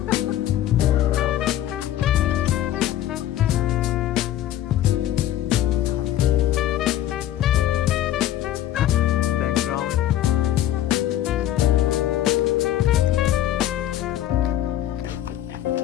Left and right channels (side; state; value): right; quieter; 12.5 dB